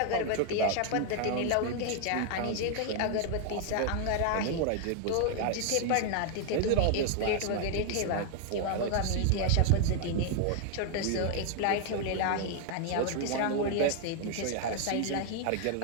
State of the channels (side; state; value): both; different; correlation 0.00